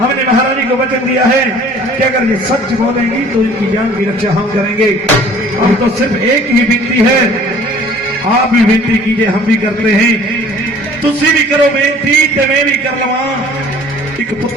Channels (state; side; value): normal; both; correlation 0.51